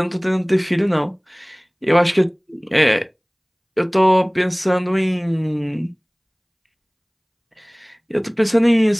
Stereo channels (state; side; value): identical; both; correlation 1.00